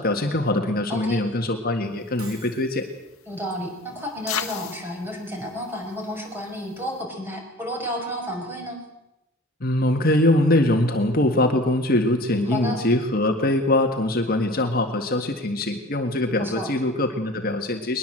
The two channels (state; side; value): normal; both; correlation 0.42